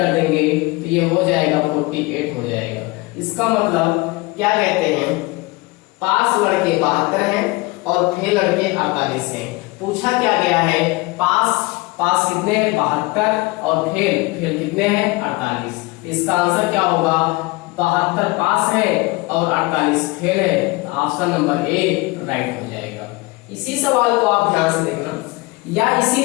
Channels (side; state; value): right; quieter; 23.1 dB